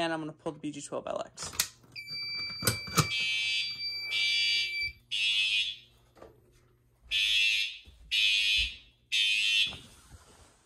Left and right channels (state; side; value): identical; both; correlation 1.00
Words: I'm gonna pull the BG12LX.